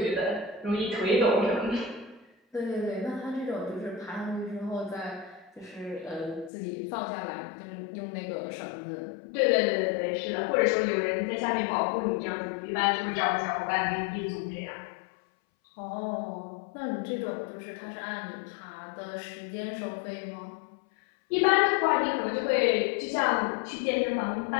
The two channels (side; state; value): right; drops out; at 6.5 s